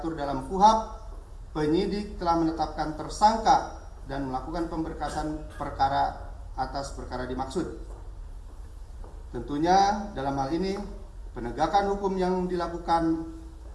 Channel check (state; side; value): identical; both; correlation 1.00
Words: dalam KUHP, penyidik telah menetapkan tersangka dan melakukan pemberkasan perkara atas perkara dimaksud. Tentunya dalam hal ini penegakan hukum yang dilakukan